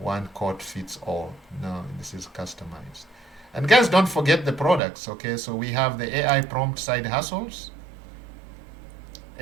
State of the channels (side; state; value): left; drops out; at 4.8 s